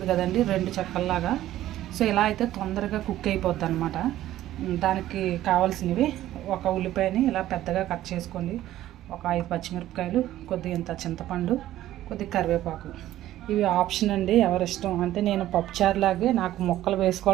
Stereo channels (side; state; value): left; quieter; 13.8 dB